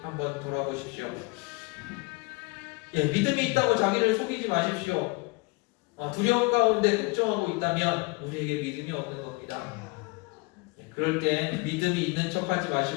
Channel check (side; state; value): right; quieter; 27.2 dB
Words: 한번 돌아보십시오. 믿음이 있다고 자기를 속이지 마십시오. 두려움 가운데 걱정하고 있다면 우리에게 믿음이 없는 겁니다. 그럴 때 믿음이 있는 척하지